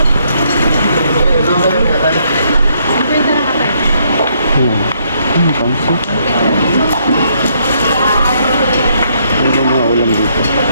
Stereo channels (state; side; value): inverted; both; correlation -0.71